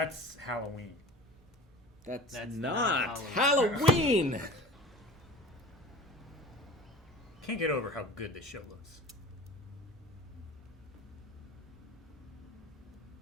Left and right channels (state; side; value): normal; both; correlation 0.39